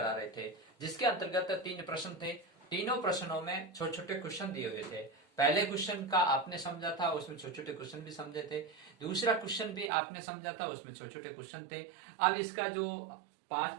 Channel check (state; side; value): drops out; left; at 9.9 s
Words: रहे थे, जिसके अंतर्गत 3 प्रश्न थे। तीनों प्रश्नों में छोटे छोटे क्वेश्चन दिए हुए थे। पहले क्वेश्चन का आपने समझा था, उसमें छोटे छोटे क्वेश्चन भी समझे थे। दूसरा क्वेश्चन भी आपने समझा था, उसमें छोटे छोटे क्वेश्चन थे। अब इसका जो